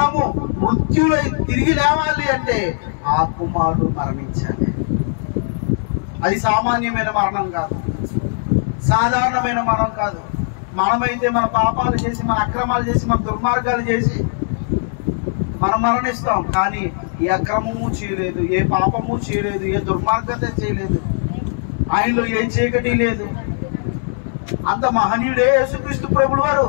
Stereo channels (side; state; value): right; silent; digital silence